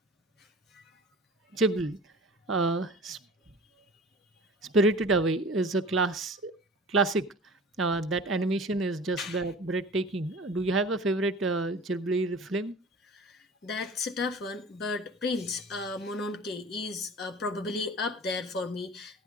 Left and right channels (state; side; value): normal; both; correlation 0.40